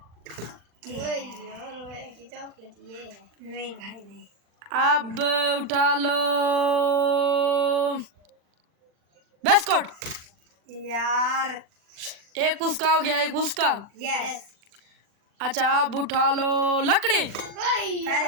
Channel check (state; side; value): late; left; 40 ms